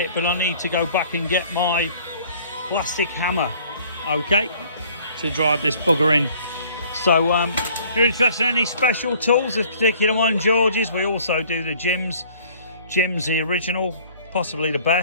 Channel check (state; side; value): inverted; both; correlation -0.55